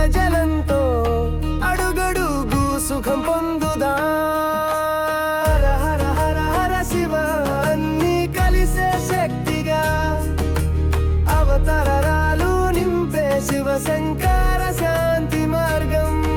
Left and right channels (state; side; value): identical; both; correlation 1.00